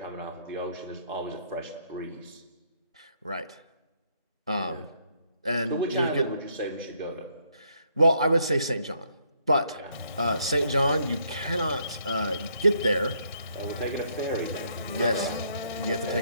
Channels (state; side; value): inverted; both; correlation -0.70